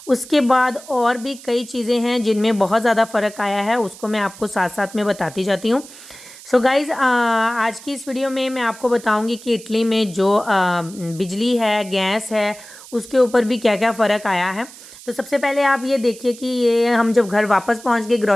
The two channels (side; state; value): right; noise; hiss, 18 dB below the sound